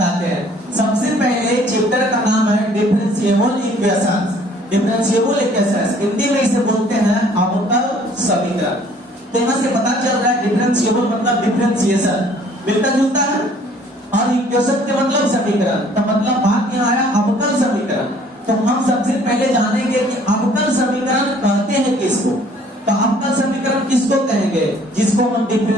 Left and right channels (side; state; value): both; normal; correlation 0.57